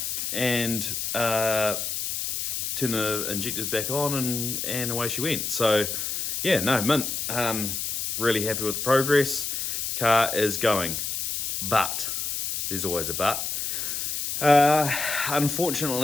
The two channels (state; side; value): noise; left; hiss, 2 dB below the sound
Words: and turned the injectors back on, and away she went. So yeah, no, mint. Really happy with the progress. The car is going, but there's always a but.